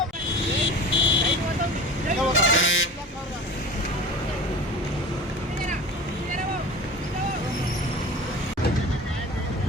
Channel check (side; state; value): both; normal; correlation 0.38